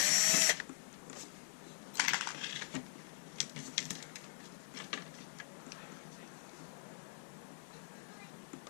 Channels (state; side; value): silent; right; digital silence